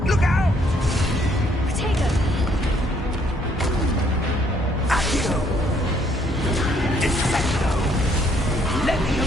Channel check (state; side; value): normal; both; correlation 0.67